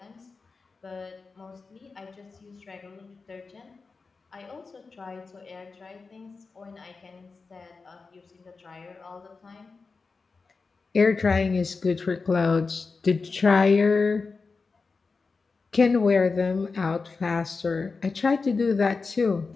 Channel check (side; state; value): right; quieter; 4.4 dB